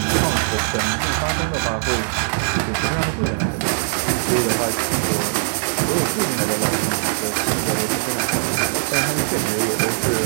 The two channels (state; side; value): silent; left; digital silence